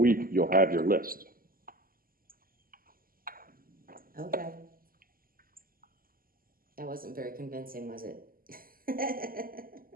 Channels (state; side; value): late; left; 0.42 ms